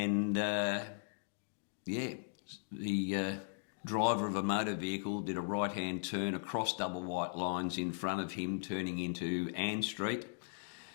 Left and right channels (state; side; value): silent; right; digital silence